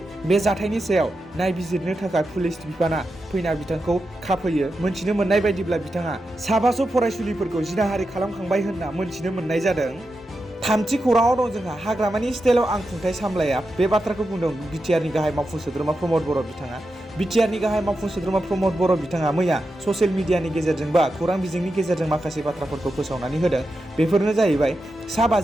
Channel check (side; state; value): both; normal; correlation 0.89